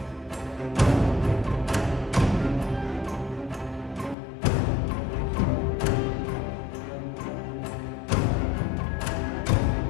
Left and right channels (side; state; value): right; drops out; at 4.2 s